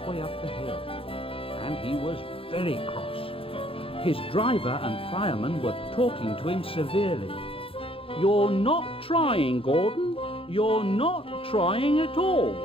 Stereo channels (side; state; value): right; late; 0.27 ms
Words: up the hill, and he was very cross. His driver and fireman were talking to him severely. "You're not trying, Gordon. You're not trying at all."